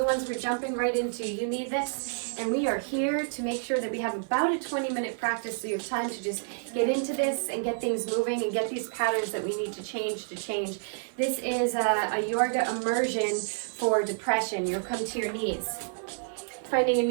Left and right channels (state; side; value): silent; left; digital silence